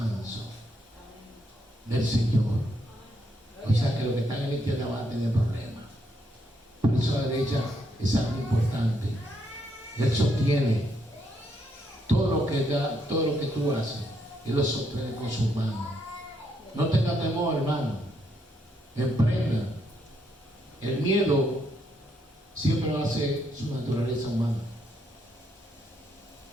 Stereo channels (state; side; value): normal; both; correlation 0.75